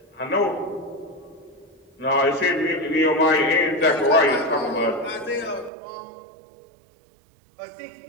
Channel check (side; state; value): left; drops out; at 5.7 s